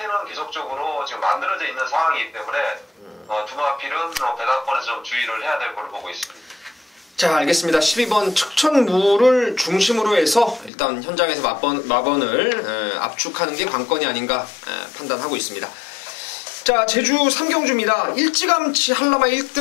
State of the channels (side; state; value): right; drops out; at 10.7 s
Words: 계속적으로 지금 만들어져 있는 상황이기 때문에 두 마필은 배당권에서 좀 주의를 해야 될 걸로 보고 있습니다. 자, 알겠습니다. 12번 측천무를 중심으로 해서 일단 현장에서 마번을 압축하는 게 관건이 아닌가 판단하고 있습니다. 자, 제주 3경주입니다. 일찌감치 한라마